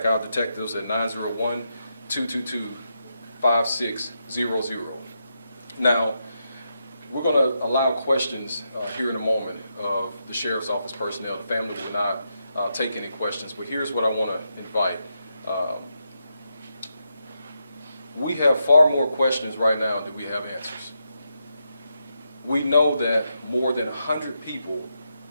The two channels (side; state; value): both; inverted; correlation -0.84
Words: our detectives at 901-222-5600. Now, we're going to allow questions here in a moment of the Sheriff's Office personnel. The family will not take any questions, but here's what I want to invite. We have far more questions right now than we have answers. We know that more than 100 people